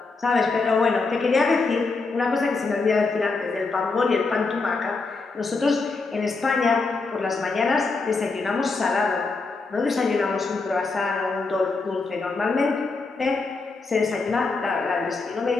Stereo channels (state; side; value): quieter; right; 4.0 dB